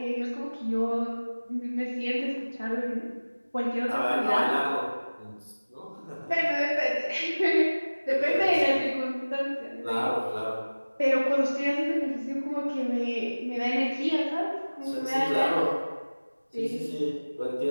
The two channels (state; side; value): inverted; both; correlation -1.00